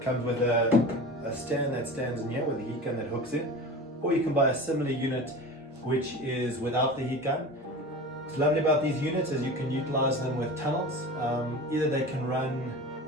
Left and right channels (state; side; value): normal; both; correlation 0.33